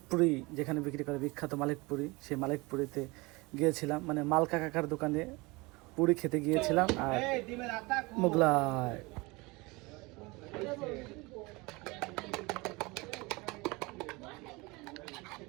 যেখানে বিক্রি করে বিখ্যাত মালিকপুরি, সেই মালিকপুরিতে গিয়েছিলাম, মানে মালকা কাকার দোকানে পুরি খেতে গিয়েছিলাম। আর মোগলাই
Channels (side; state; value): left; quieter; 24.6 dB